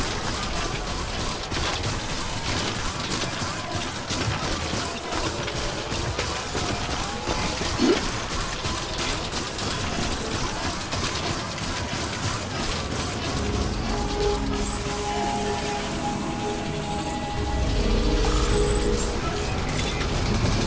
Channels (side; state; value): both; identical; correlation 1.00